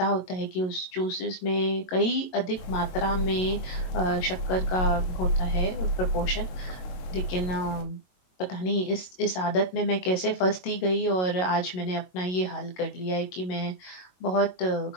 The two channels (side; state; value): right; late; 22 ms